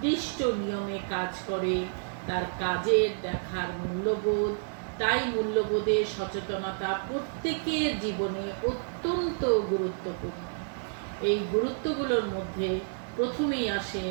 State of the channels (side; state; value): left; silent; digital silence